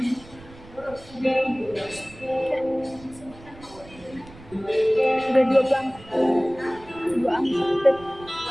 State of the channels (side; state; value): right; noise; rumble, 21 dB below the sound